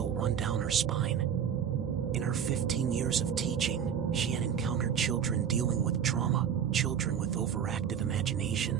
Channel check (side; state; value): left; quieter; 8.3 dB